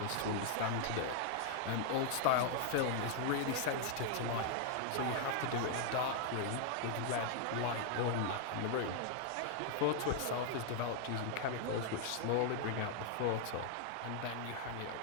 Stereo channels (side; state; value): both; different; correlation 0.00